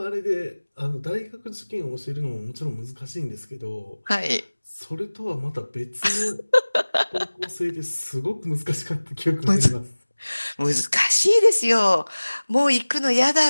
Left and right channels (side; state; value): both; inverted; correlation -1.00